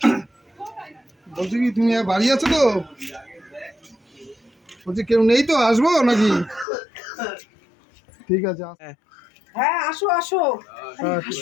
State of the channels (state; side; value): drops out; right; at 6.7 s